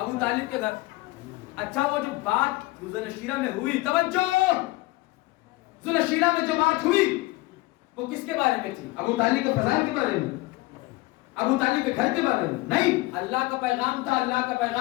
طالب کے گھر. اچھا وہ جو بات ذوالشیرہ میں ہوئی، توجہ، ذوالشیرہ میں جو بات ہوئی وہ کس کے بارے میں تھی؟ ابو طالب کے فضائل کے بارے میں، ابو طالب کے گھر کے بارے میں نہیں. اللہ کا پیغام تھا، اللہ کا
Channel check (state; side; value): quieter; right; 21.1 dB